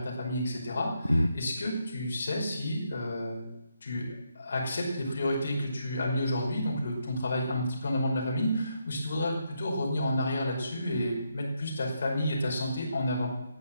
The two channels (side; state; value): both; inverted; correlation -0.79